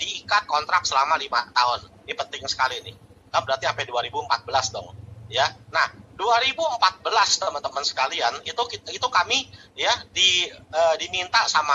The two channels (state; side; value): identical; both; correlation 1.00